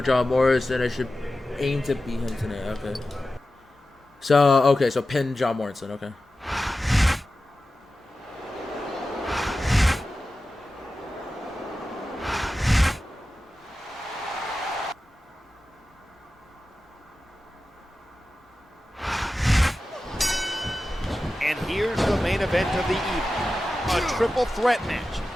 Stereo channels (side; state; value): both; normal; correlation 0.93